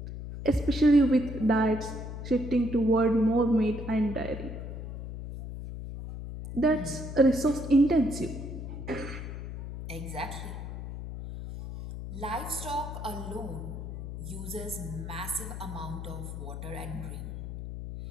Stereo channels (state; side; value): noise; left; hum, 8 dB below the sound